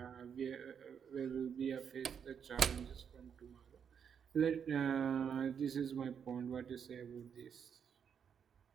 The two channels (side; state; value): left; quieter; 7.4 dB